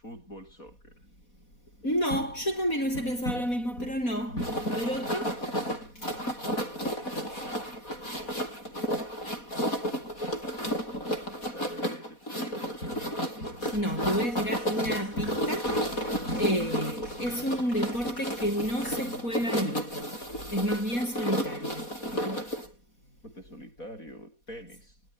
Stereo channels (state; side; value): late; right; 4.2 ms